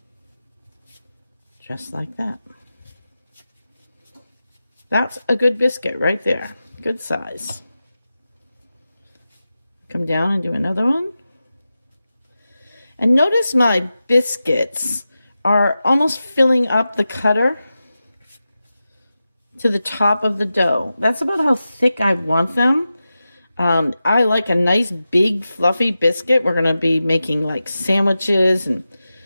Just like that. That's a good biscuit right there. Good size. Come down and do another one. And notice my biscuits are almost filling up the cutter to the top of the dough. That's about how thick I want them. I like a nice big fluffy biscuit. We're going to be making like sandwiches and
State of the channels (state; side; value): inverted; both; correlation -0.93